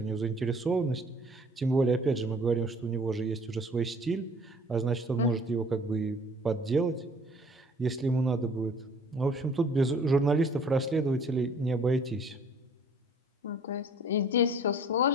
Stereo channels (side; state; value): both; normal; correlation 0.53